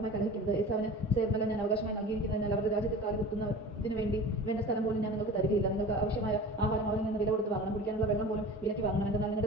കലഹിക്കരുത്. ഏസാവിന് സേർമല ഞാൻ അവകാശമായി നൽകിയിരിക്കുന്നതിനാൽ അവരുടെ രാജ്യത്തിൽ കാലുകുത്തുന്നതിന് വേണ്ട സ്ഥലം പോലും ഞാൻ നിങ്ങൾക്ക് തരികയില്ല. നിങ്ങൾക്ക് ആവശ്യമായ ആഹാരം അവരിൽ നിന്ന് വില കൊടുത്ത് വാങ്ങണം. കുടിക്കാനുള്ള വെള്ളം പോലും വിലയ്ക്ക് വാങ്ങണം. എന്നാൽ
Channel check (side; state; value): both; normal; correlation 0.37